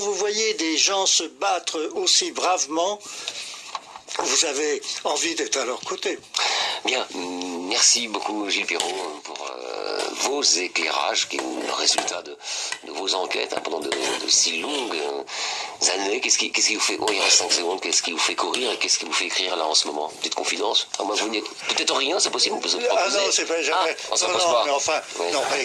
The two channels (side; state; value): both; identical; correlation 1.00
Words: voyez des gens se battre aussi bravement, vous avez envie d'être à leur côté. Bien, merci beaucoup Gilles Perrault pour vos éclairages, qui sont le résultat de vos enquêtes pendant de si longues années. Qu'est-ce qui vous fait, il reste 5 secondes, qu'est-ce qui vous fait courir et qu'est-ce qui vous fait écrire là en ce moment? Petite confidence. Moi, vous n'êtes peut-être rien, c'est possible, on peut se proposer. Ah non, c'est pas jamais. Non, mais enfin, oui. non, mais